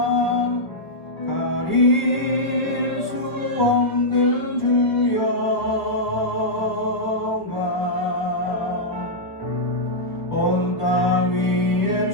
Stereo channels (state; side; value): late; right; 1.3 ms